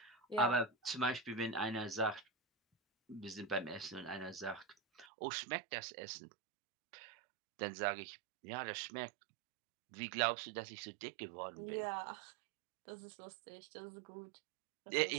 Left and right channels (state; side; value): drops out; left; at 5.1 s